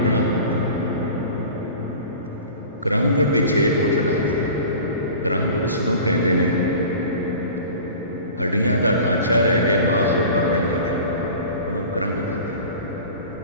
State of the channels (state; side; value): inverted; both; correlation -0.39